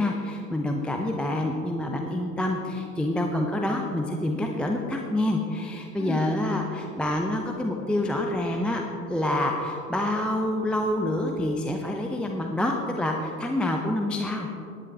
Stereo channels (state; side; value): normal; both; correlation 0.69